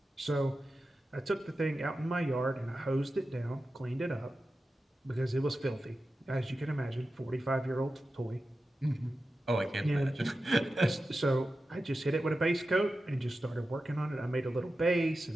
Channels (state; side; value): normal; both; correlation 0.93